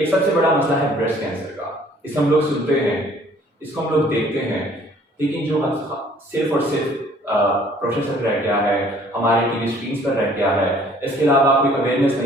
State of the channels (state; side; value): normal; both; correlation 0.57